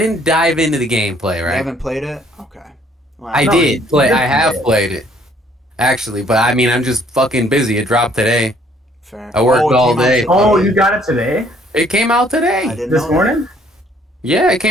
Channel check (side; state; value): both; normal; correlation 0.62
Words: dive into the gameplay, You right? haven't played it? Okay. Well, I No, did you play. did I have play it. played it, actually. But I mean, I'm just fucking busy. It dropped today. Fair. I worked it all came out day. today. Oh, you got it today? It came out I today. didn't This know that. morning? Yeah, it